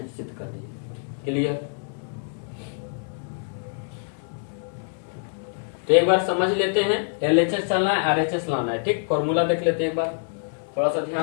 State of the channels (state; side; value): silent; right; digital silence